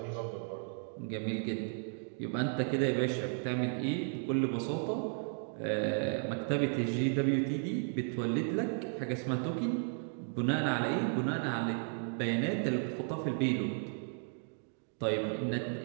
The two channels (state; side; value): silent; left; 55 dB below the other